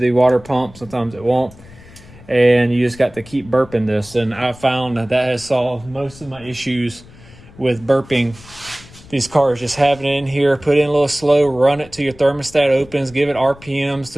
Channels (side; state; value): left; noise; rumble, 21 dB below the sound